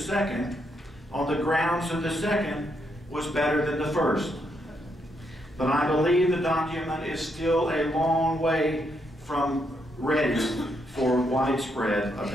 on the grounds that the second was better than the first. But I believe the document is still a long way from ready for widespread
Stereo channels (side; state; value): both; normal; correlation 0.77